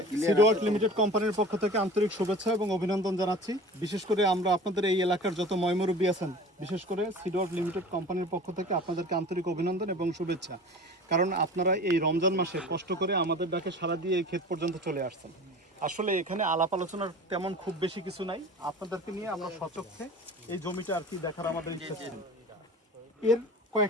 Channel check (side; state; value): both; normal; correlation 0.39